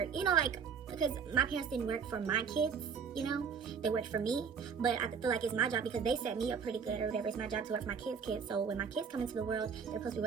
you know, like, because my parents didn't work for my kids, you know, they worked for me. But I feel like it's my job because they set me up pretty good or whatever. It's my job to work for my kids. So when my kids come into the world, they're supposed to be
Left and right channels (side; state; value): left; quieter; 6.3 dB